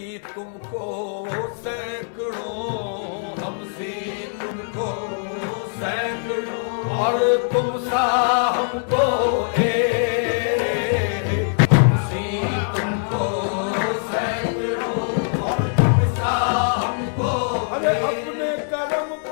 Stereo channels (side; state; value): right; silent; digital silence